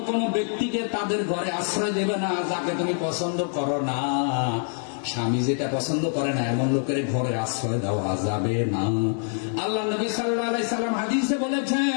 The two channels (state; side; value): silent; right; 57 dB below the other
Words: কোন ব্যক্তিকে তাদের ঘরে আশ্রয় দেবে না যাকে তুমি পছন্দ করো না। স্বামী যেটা পছন্দ করে না এমন লোকের ঘরে আশ্রয় দেওয়া যাবে না। আল্লাহ নবী সাল্লাল্লাহু আলাইহি সাল্লাম হাদিসে